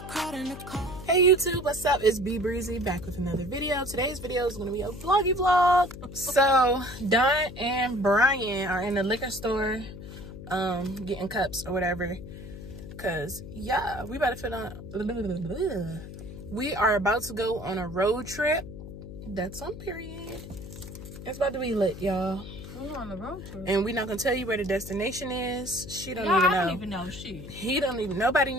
cried in the car. Hey YouTube, what's up? It's B Breezy back with another video. Today's video is going to be a vloggy vlog. So Don and Brian are in the liquor store getting cups or whatever, because yeah, we about to fit on. We are about to go on a road trip. That's on period. It's about to be lit, y'all. We're on the road trip. And we're not gonna tell you where the destination is. She don't Yeah, even know. I don't even know shit. He don't even, nobody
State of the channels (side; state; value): left; noise; hum, 12 dB below the sound